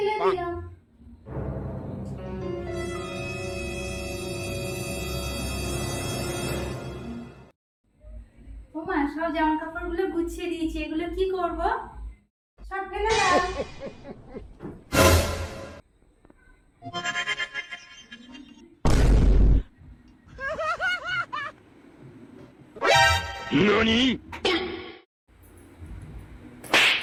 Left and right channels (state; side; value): identical; both; correlation 1.00